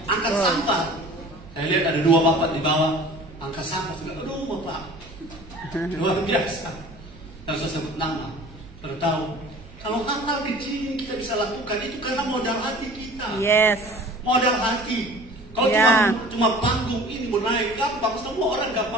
Angkat sampah. Saya lihat ada dua bapak di bawah angkat sampah. Aduh bapak, luar biasa. Dan saya sebut nama. Saudara tahu, kalau hal-hal kecil kita bisa lakukan itu karena modal hati kita. Yes. Modal hati. Kalau cuma panggung ini mau naik gampang, semua orang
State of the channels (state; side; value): noise; right; hum, 20 dB below the sound